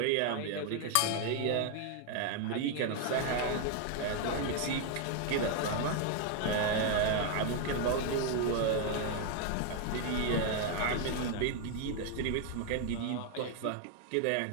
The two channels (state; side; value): different; both; correlation 0.01